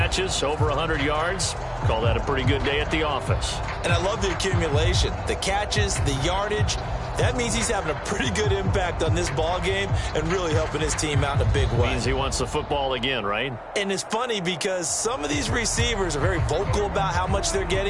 over 100 yards. Call that a pretty good day at the office. And I love the accumulation, the catches, the yardage. That means he's having a pretty good impact on this ball game and really helping his team out in a big way. Means he wants the football again, right? And it's funny because some of these receivers are very vocal about how much they're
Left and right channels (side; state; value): both; identical; correlation 1.00